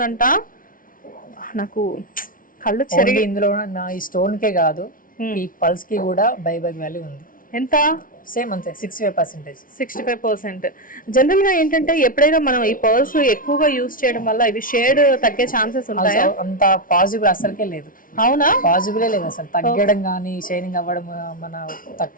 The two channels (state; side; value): late; right; 0.40 ms